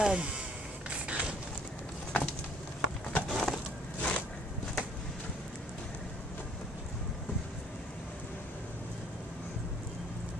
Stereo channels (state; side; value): normal; both; correlation 0.59